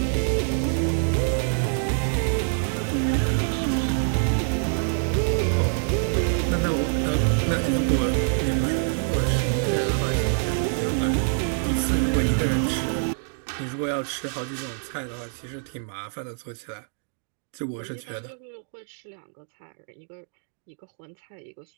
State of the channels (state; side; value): silent; left; digital silence